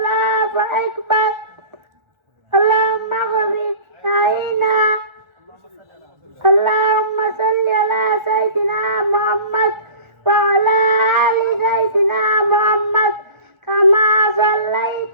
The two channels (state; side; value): late; left; 1.4 ms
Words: أكبر اللهم اغفر لنا اللهم صل على سيدنا محمد وعلى آل سيدنا محمد كما